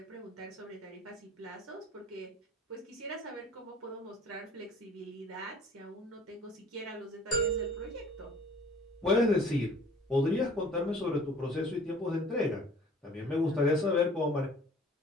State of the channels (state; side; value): normal; both; correlation 0.51